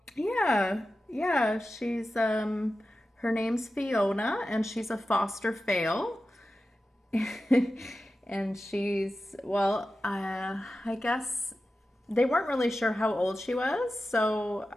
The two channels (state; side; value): normal; both; correlation 0.93